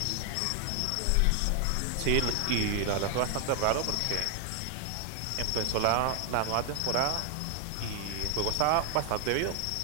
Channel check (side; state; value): both; different; correlation 0.00